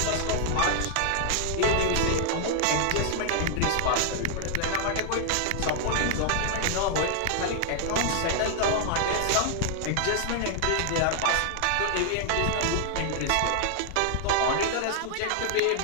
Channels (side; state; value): both; different; correlation 0.00